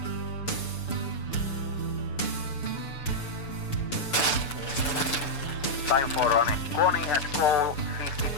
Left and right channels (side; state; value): right; late; 6.9 ms